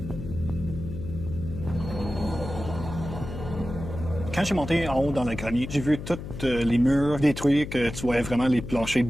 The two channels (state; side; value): noise; left; hum, 9 dB below the sound